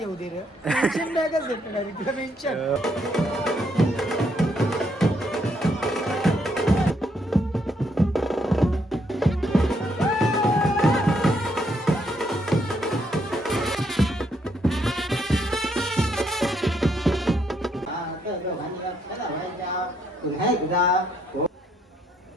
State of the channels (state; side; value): normal; both; correlation 0.73